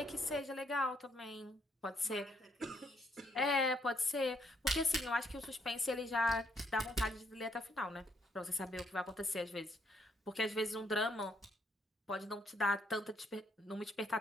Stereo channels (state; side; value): normal; both; correlation 0.72